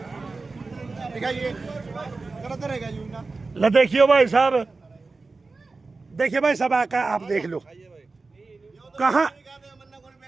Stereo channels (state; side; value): quieter; left; 3.8 dB